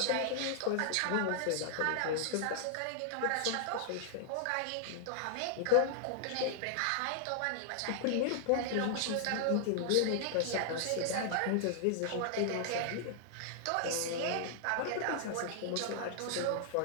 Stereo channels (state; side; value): different; both; correlation -0.01